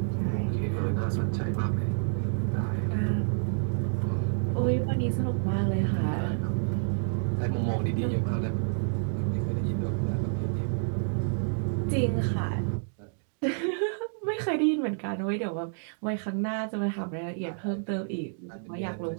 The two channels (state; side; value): silent; left; digital silence